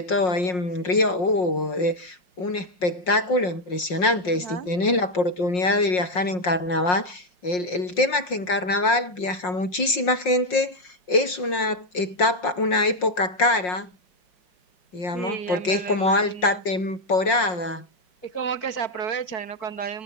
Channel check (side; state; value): right; late; 5.6 ms